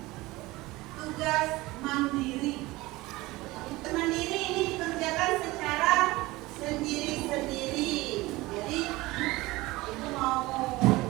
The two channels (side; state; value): left; quieter; 20.2 dB